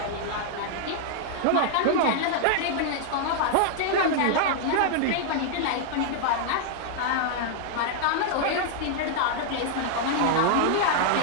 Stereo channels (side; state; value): both; different; correlation -0.01